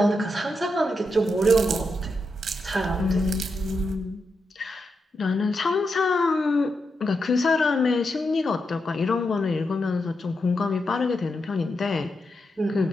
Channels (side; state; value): both; normal; correlation 0.85